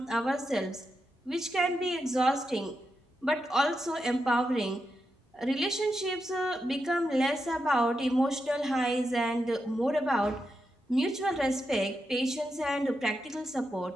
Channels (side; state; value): both; normal; correlation 0.86